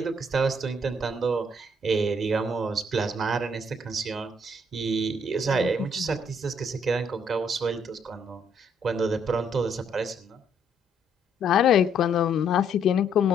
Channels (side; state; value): both; normal; correlation 0.68